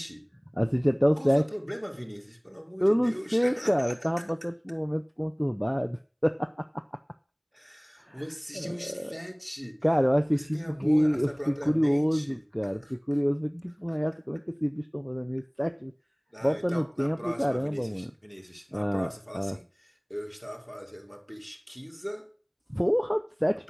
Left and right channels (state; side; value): identical; both; correlation 1.00